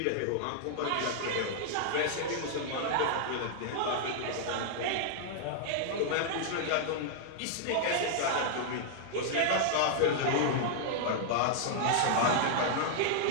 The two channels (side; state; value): both; different; correlation -0.01